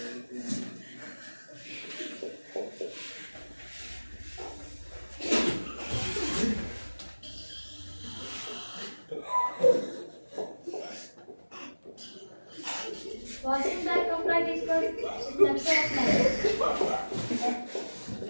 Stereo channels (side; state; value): both; inverted; correlation -1.00